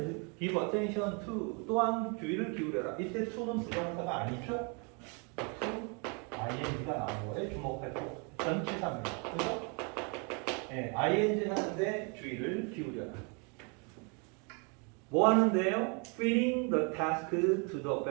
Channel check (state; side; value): quieter; left; 34.6 dB